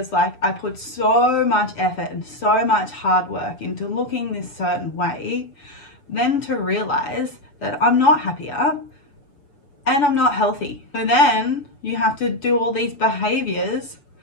like I put so much effort and so much hard work into looking this certain way, then to realize that I'm not happier and I'm not healthy. So then you have to do all these behaviors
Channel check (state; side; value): late; right; 7.0 ms